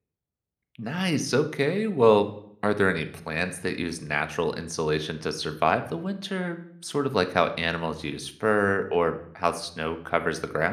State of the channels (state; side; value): identical; both; correlation 1.00